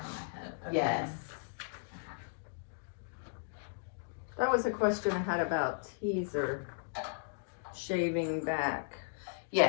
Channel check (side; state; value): right; silent; digital silence